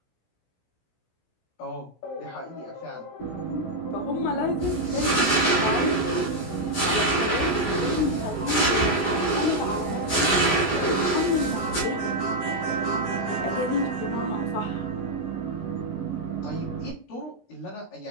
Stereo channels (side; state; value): right; late; 16 ms